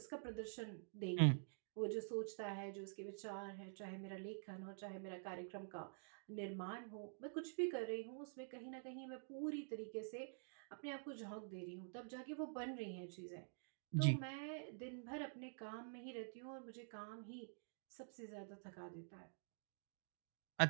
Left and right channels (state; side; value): silent; left; digital silence